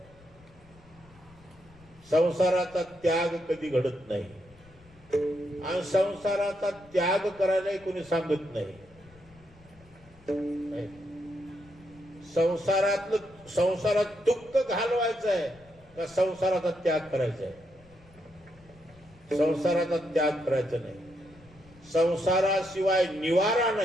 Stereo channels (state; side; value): noise; left; rumble, 26 dB below the sound